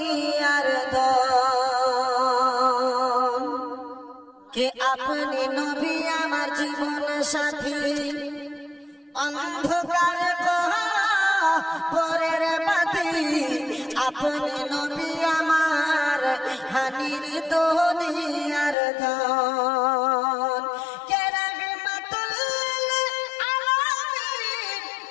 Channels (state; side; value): drops out; right; at 18.8 s